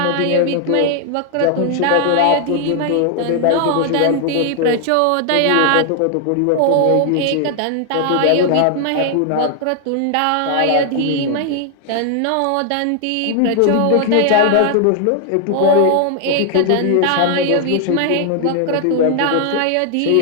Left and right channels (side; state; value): both; different; correlation 0.00